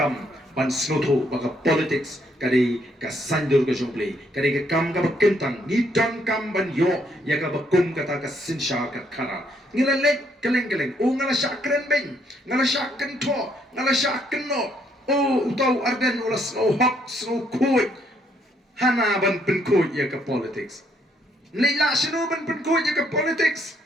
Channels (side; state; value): both; normal; correlation 0.71